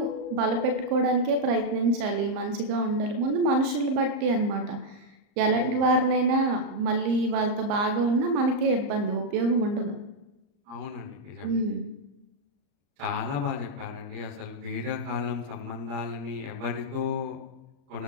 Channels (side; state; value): left; late; 34 ms